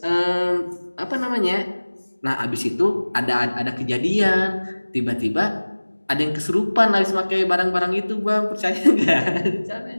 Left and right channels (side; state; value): both; inverted; correlation -1.00